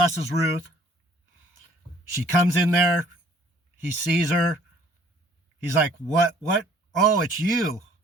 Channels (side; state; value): both; normal; correlation 0.57